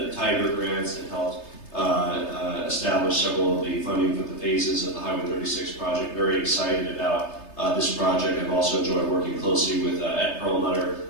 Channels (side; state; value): right; late; 3.3 ms